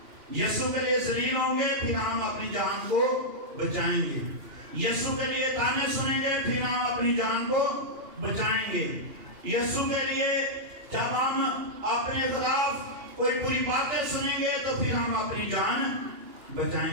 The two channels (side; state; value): left; late; 2.8 ms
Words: یسوع کے لیے ذلیل ہوں گے، پھر ہم اپنی جان کو بچائیں گے۔ یسوع کے لیے تانے سنیں گے، پھر ہم اپنی جان کو بچائیں گے۔ یسوع کے لیے جب ہم اپنے خلاف کوئی بری باتیں سنیں گے تو پھر ہم اپنی جان